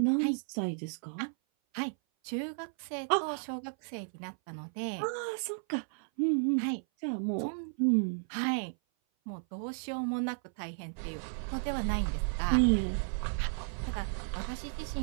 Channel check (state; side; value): silent; left; 55 dB below the other